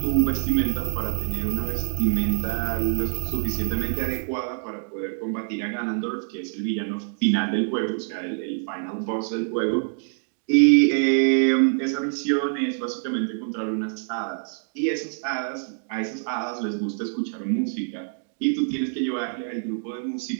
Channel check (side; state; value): left; silent; digital silence